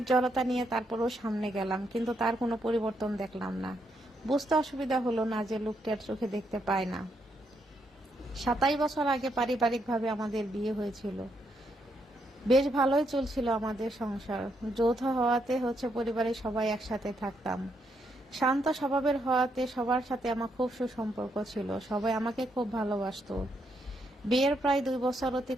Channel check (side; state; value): both; normal; correlation 0.77